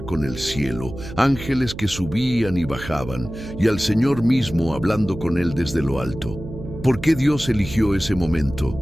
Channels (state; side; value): noise; right; hum, 12 dB below the sound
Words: el cielo, ángeles que subían y bajaban, y al Señor mismo hablando con él desde lo alto. ¿Por qué Dios eligió ese